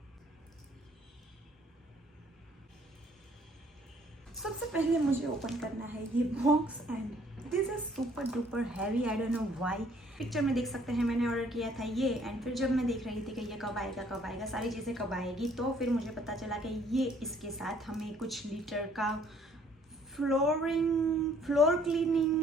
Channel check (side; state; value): both; normal; correlation 0.61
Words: सबसे पहले मुझे ओपन करना है ये box, and this is super duper heavy, I don't know why. Picture में देख सकते हैं मैंने ऑर्डर किया था ये, एंड फिर जब मैं देख रही थी कि ये कब आएगा सारी चीज़ें कब आएगी, तो फिर मुझे पता चला कि ये इसके साथ हमें कुछ लीटर का फ्लोर